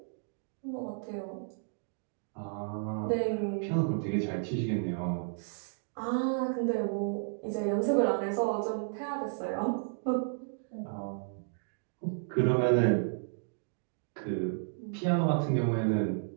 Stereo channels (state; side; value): silent; left; digital silence